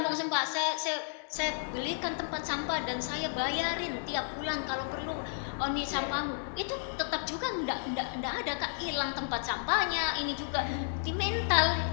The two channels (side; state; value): right; silent; digital silence